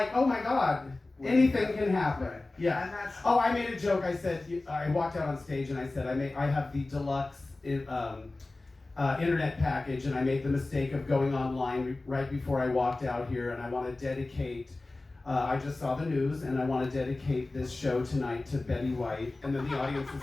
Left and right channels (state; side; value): quieter; right; 3.1 dB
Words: oh my God, anything can happen. Yeah. Oh, I made a joke. I said, I walked out on stage and I said, I have the deluxe internet package, and I made the mistake of going online right before I walked out here, and I want to dedicate, I just saw the news, and I want to dedicate this show tonight to Betty White. And then the audience is